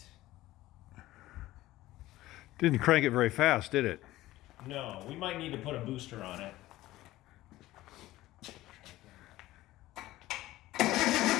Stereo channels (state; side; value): quieter; right; 16.5 dB